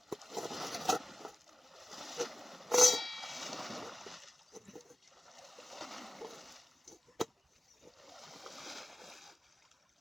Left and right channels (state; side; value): normal; both; correlation 0.95